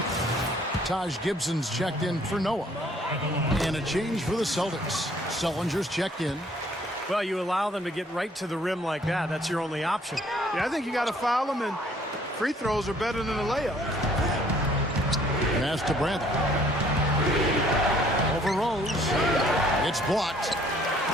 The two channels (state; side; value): normal; both; correlation 0.60